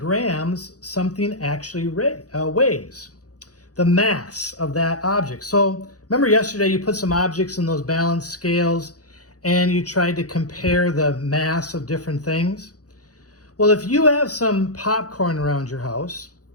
something actually weighs, the mass of that object. So remember yesterday you put some objects in those balance scales and you tried to compare the mass of different things? Well, if you have some popcorn around your house,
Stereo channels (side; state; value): right; late; 0.67 ms